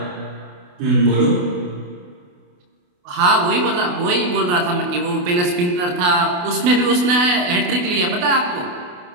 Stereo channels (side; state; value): left; late; 28 ms